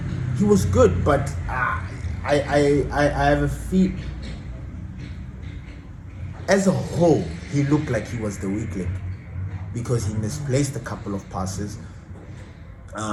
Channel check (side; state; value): both; identical; correlation 1.00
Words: he was good, but I have a feel. As a whole, he looked like he was the weak link because he misplaced a couple of passes.